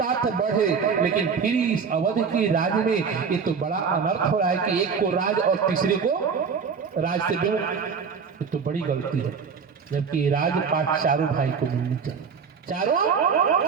बढ़े। लेकिन फिर इस अवध के राज में ये तो बड़ा अनर्थ हो रहा है कि एक को राज और तीसरे को राज से विमुख। ये तो बड़ी गलती है, जबकि राजपाट चारों भाई को मिलनी चाहिए, चारों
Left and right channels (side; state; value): left; quieter; 5.9 dB